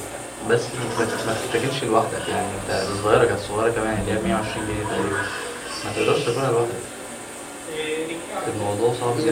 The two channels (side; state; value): both; identical; correlation 1.00